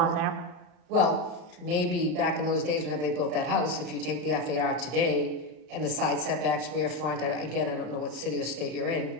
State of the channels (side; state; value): left; late; 33 ms